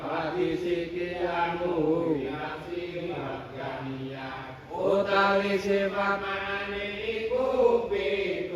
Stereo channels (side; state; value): both; identical; correlation 1.00